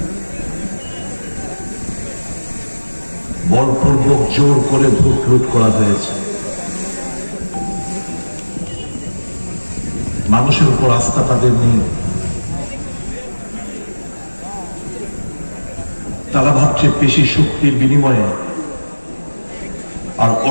বলপূর্বক জোর করে ভোট লুট করা হয়েছে। মানুষের উপর আস্থা তাদের নেই। তারা ভাবছে পেশি শক্তির বিনিময়ে আর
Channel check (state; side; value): inverted; both; correlation -1.00